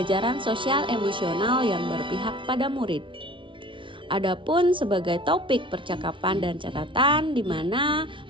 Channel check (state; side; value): late; left; 0.25 ms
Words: sosial emosional yang berpihak pada murid. Adapun sebagai topik percakapan dan catatan di mana